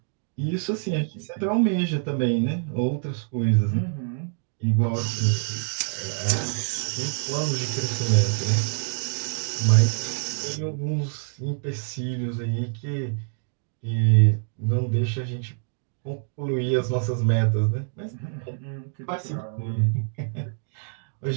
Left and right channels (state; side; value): silent; left; digital silence